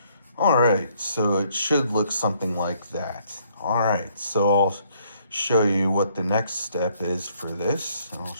All right, so it should look something like that. All right, so I'll show you what the next step is for this. I'll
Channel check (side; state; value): both; inverted; correlation -0.66